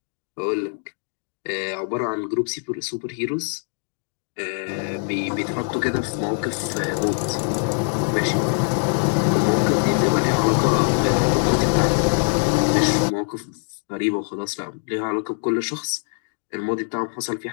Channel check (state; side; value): silent; right; 63 dB below the other